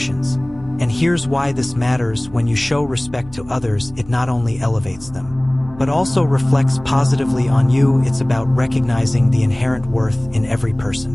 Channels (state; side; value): noise; right; hum, 21 dB below the sound